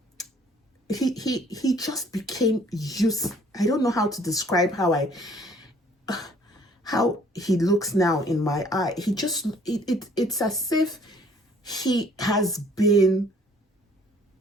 he just became used. I don't know how to describe how he looks now in my eye. He just, it's as if he has been,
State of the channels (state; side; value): normal; both; correlation 0.58